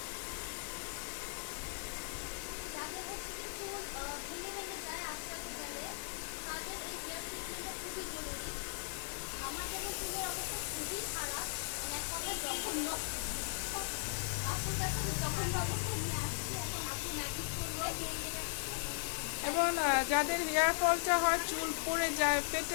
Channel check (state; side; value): silent; right; digital silence